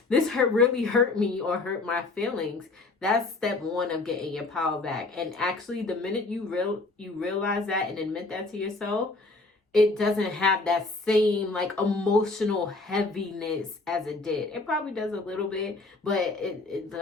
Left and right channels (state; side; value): quieter; right; 3.4 dB